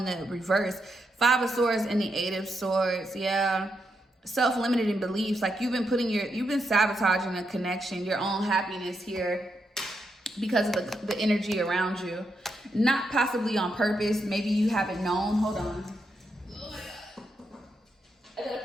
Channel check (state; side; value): normal; both; correlation 0.83